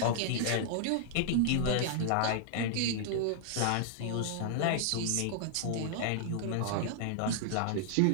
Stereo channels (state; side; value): different; both; correlation -0.01